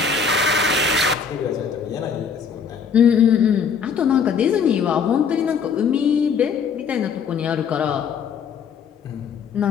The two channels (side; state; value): right; quieter; 6.2 dB